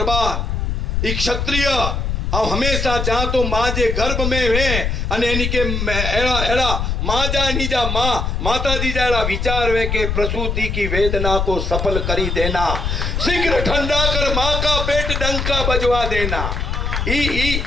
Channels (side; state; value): left; noise; rumble, 1 dB below the sound